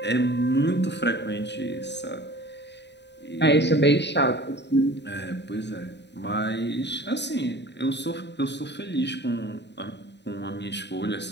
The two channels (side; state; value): right; late; 0.50 ms